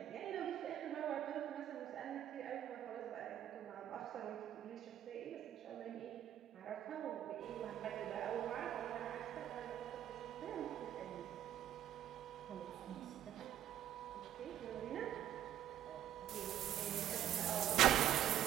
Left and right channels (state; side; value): quieter; left; 11.4 dB